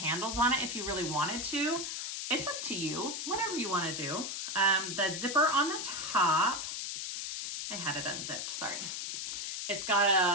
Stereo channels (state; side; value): noise; left; hiss, 4 dB below the sound